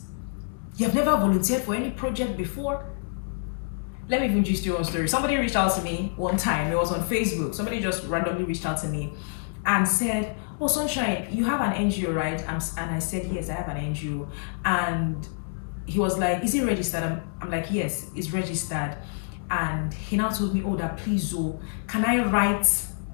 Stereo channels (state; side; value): silent; right; 60 dB below the other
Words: You have never volunteered for any project before. Let me even just do one story. Somebody reached out to me one time. It was on Facebook. Somebody just randomly reached out to me and said, "Oh, Sunshine, you have an NGO, right?" And I said, "Yes, I have an NGO." And he was like, "Is it registered?" I'm like, "Yes, it's registered." And he now told me, "Oh, that please, can I write